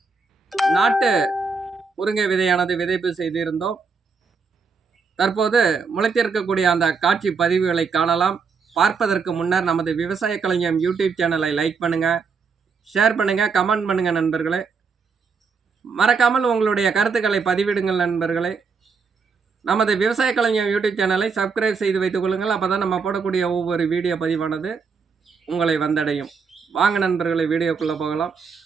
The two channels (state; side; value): quieter; left; 5.2 dB